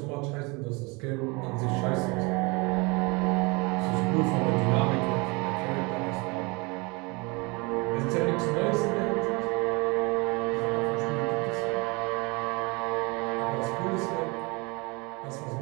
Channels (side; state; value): left; quieter; 27.6 dB